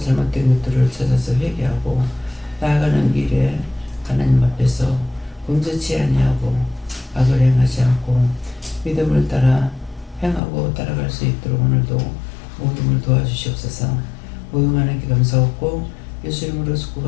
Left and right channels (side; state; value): right; drops out; at 10.4 s